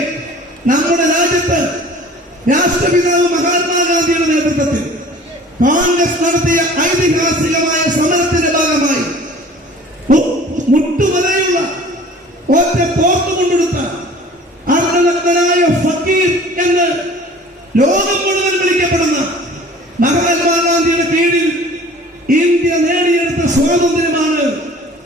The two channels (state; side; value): normal; both; correlation 0.47